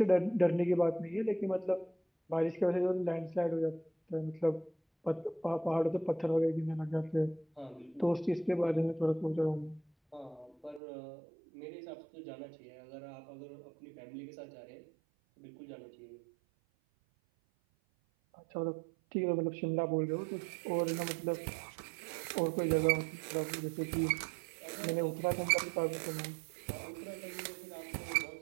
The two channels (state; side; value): drops out; left; at 10.8 s